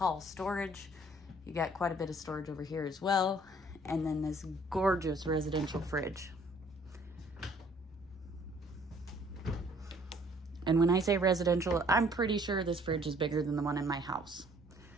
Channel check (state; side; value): normal; both; correlation 0.59